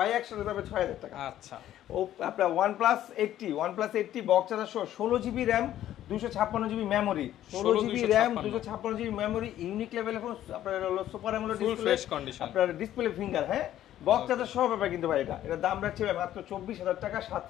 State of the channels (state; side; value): quieter; right; 12.4 dB